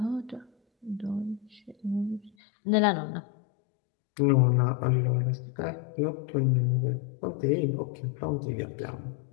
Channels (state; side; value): drops out; right; at 2.3 s